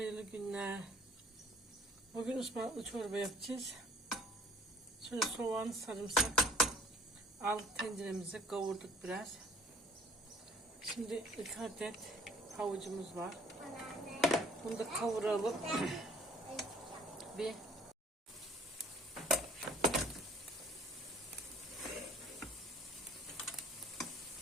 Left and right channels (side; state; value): both; normal; correlation 0.55